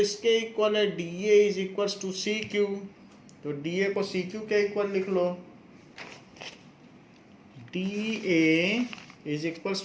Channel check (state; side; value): identical; both; correlation 1.00